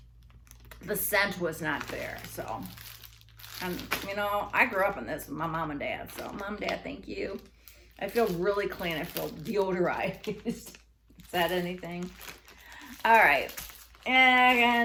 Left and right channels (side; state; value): both; identical; correlation 1.00